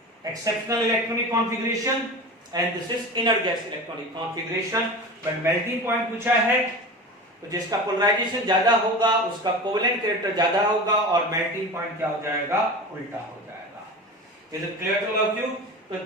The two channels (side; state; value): both; normal; correlation 0.31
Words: exceptional electronic configuration and this is inert gas electronic configuration. But melting point पूछा है तो जिसका पोलराइजेशन ज्यादा होगा उसका कोवेलेंट कैरेक्टर ज्यादा होगा और मेल्टिंग पॉइंट क्या हो जाएगा, उल्टा हो जाएगा। Is it clear to all of you? तो